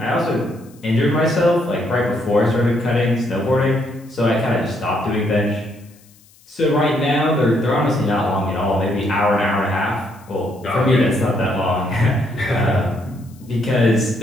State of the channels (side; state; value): left; noise; hiss, 29 dB below the sound